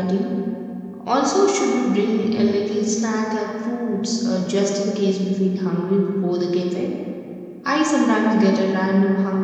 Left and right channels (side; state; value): both; identical; correlation 1.00